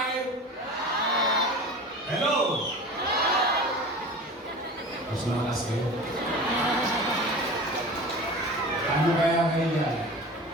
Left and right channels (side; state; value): both; normal; correlation 0.36